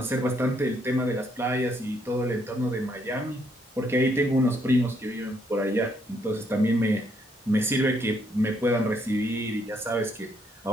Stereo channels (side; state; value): both; normal; correlation 0.72